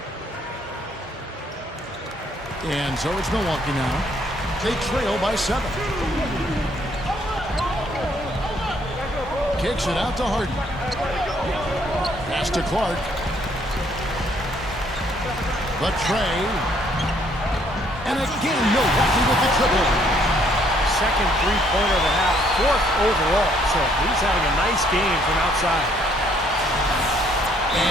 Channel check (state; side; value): normal; both; correlation 0.66